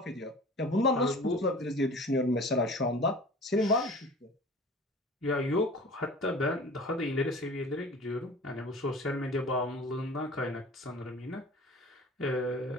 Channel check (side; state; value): both; normal; correlation 0.42